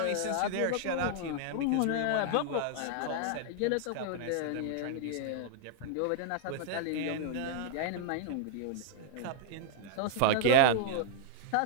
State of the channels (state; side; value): different; both; correlation -0.01